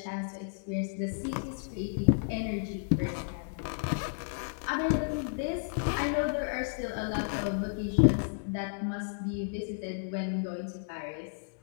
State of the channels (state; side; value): silent; right; 56 dB below the other